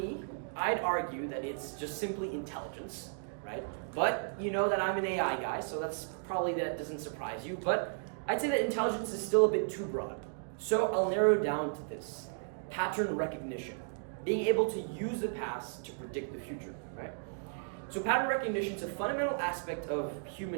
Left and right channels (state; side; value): silent; left; digital silence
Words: I'd argue that it's just simply intelligence, right? But you know that I'm an AI guy, so that doesn't surprise you. But I'd say that intelligence is still a bit too broad. So I'll narrow down to this: pattern recognition, being able to use the past to predict the future, right? So pattern recognition is a fundamental aspect of